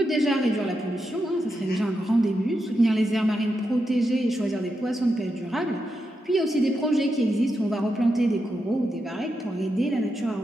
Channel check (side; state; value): both; normal; correlation 0.86